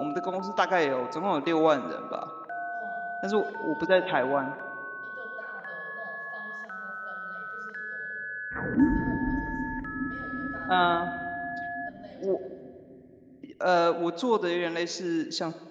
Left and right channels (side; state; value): both; identical; correlation 1.00